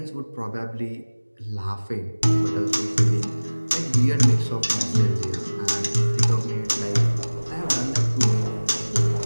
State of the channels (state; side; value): inverted; both; correlation -1.00